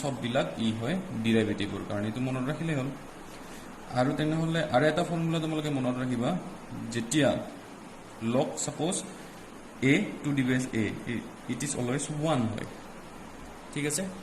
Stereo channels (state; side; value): identical; both; correlation 1.00